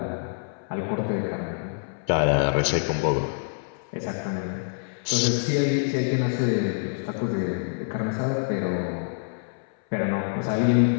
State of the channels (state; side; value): silent; right; 61 dB below the other